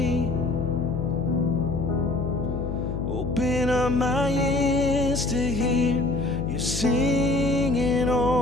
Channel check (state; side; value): noise; left; hum, 4 dB below the sound